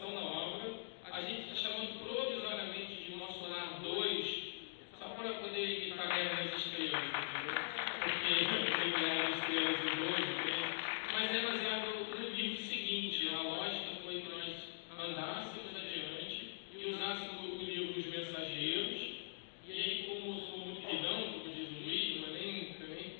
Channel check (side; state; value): right; silent; digital silence